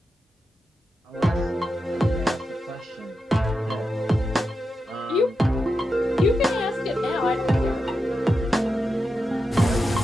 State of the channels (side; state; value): both; normal; correlation 0.88